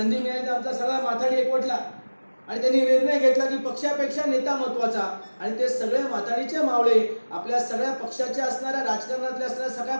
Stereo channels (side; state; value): both; inverted; correlation -1.00